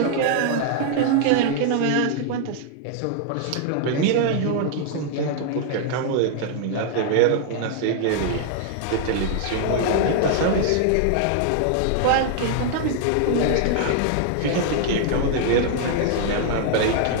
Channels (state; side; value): different; both; correlation 0.00